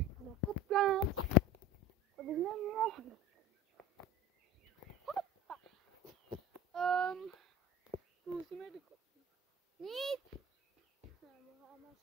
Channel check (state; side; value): normal; both; correlation 0.36